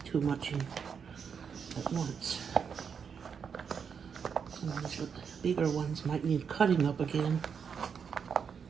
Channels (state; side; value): quieter; left; 6.7 dB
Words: too much in at once. Some of these bigger ones might need cutting up again.